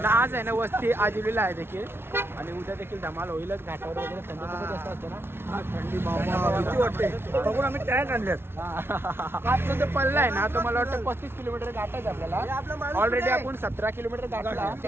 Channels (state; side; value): late; left; 0.12 ms